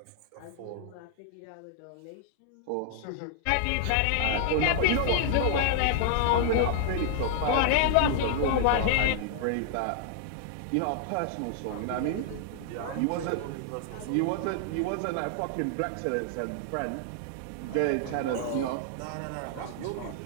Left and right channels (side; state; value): both; different; correlation -0.01